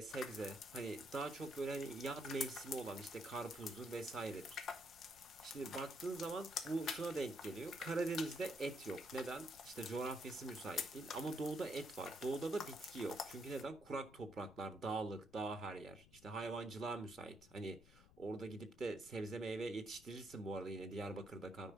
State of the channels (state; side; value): noise; left; rumble, 22 dB below the sound